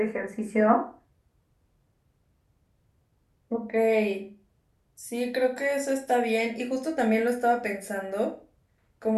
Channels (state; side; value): identical; both; correlation 1.00